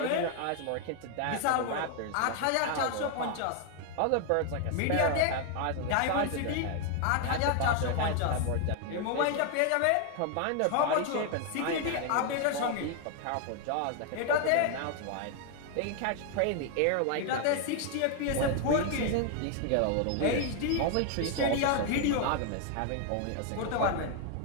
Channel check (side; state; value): both; different; correlation 0.00